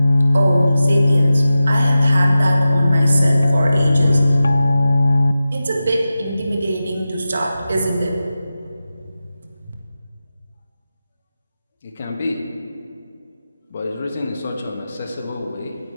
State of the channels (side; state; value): both; inverted; correlation -0.93